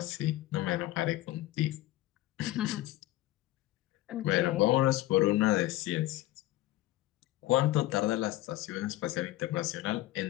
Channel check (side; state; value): right; quieter; 16.0 dB